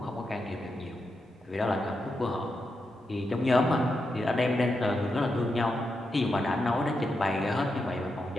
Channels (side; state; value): both; normal; correlation 0.86